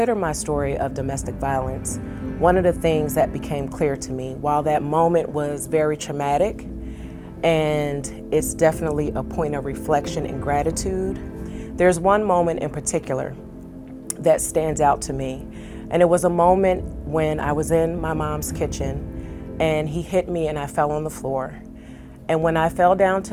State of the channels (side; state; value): both; identical; correlation 1.00